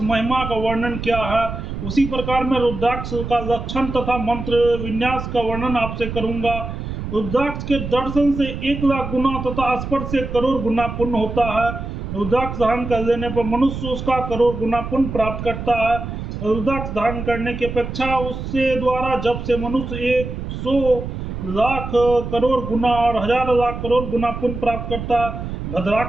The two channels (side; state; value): right; noise; rumble, 7 dB below the sound